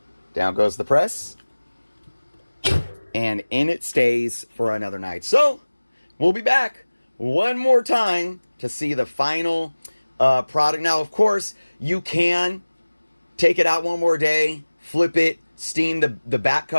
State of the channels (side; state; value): both; inverted; correlation -1.00